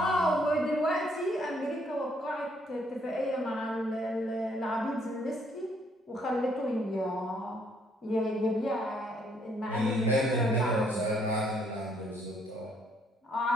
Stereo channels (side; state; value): both; normal; correlation 0.68